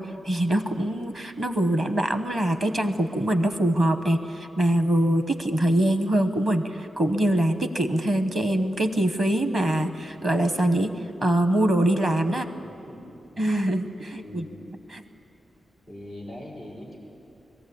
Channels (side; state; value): both; normal; correlation 0.88